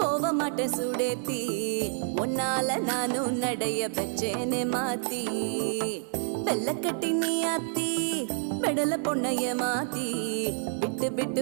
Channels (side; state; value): left; silent; digital silence